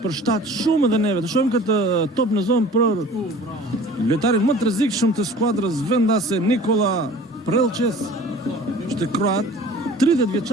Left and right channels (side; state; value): both; normal; correlation 0.45